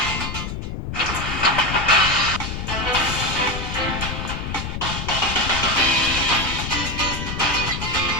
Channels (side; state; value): left; noise; rumble, 6 dB below the sound